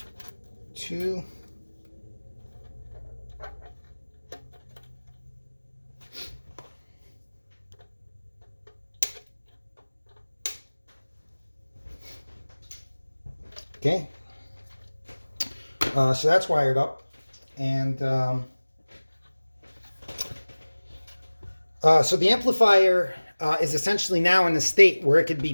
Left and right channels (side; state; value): both; inverted; correlation -1.00